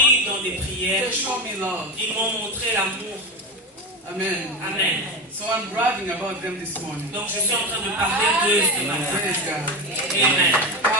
dans des prières. They showed me love. Ils m'ont montré l'amour. Amen. Amen. So I'm bragging about them this morning. Donc je suis en train de parler d'eux ce matin. Praise God. Amen.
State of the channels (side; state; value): both; normal; correlation 0.19